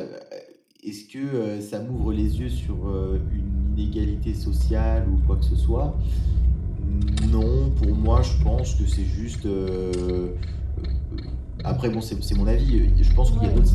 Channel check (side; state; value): both; identical; correlation 1.00